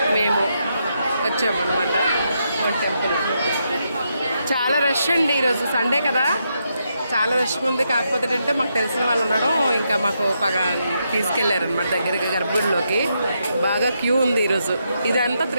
మేము వచ్చాము అనమాట టెంపుల్. చాలా రష్ అండి, ఈరోజు సండే కదా, చాలా రష్గా ఉంది. కాకపోతే ఏంటంటే మాకు తెలిసిన వాళ్ళు ఉండడం, ఇంకా మాకు తీసుకెళ్లారు అనమాట దగ్గరికి గర్భగుడిలోకి. బాగా క్యూ ఉంది ఈరోజు. ఇదంతా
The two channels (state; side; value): inverted; both; correlation -0.81